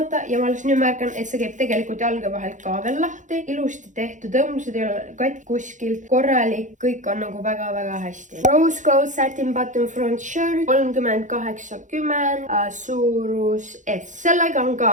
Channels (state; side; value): late; left; 0.36 ms